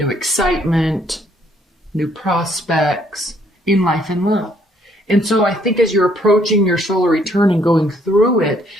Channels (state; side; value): normal; both; correlation 0.66